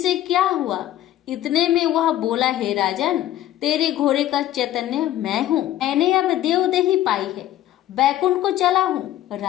क्या हुआ। इतने में वह बोला, हे राजन, तेरे घोड़े का चैतन्य मैं हूँ। मैंने अब देवदेही पाई है, बैकुंठ को चला हूँ।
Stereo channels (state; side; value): quieter; right; 13.2 dB